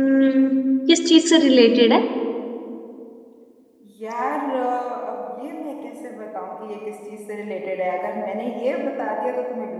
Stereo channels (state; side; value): identical; both; correlation 1.00